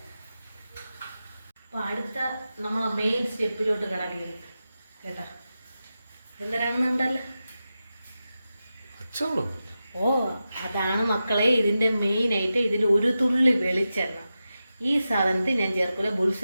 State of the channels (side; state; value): both; inverted; correlation -0.92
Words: അപ്പോൾ അടുത്ത നമ്മളെ മെയിൻ സ്റ്റെപ്പിലോട്ട് കിടക്കുന്നത് കേട്ടോ, എന്തരാണെന്നുണ്ടല്ലോ. ഓ അതാണ് മക്കളെ ഇതിൻ്റെ മെയിനായിട്ട്. ഇതിൽ ഒരു തുള്ളി വെളിച്ചെണ്ണ ഈ സാധനത്തിൽ ഞാൻ ചേർക്കില്ല. ബുൾസ